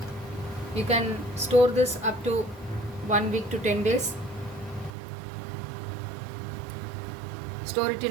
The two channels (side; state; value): left; drops out; at 4.9 s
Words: You can store this up to 1 week to 10 days. Store it